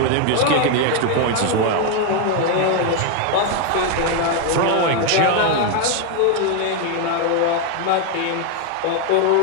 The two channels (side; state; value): both; different; correlation 0.01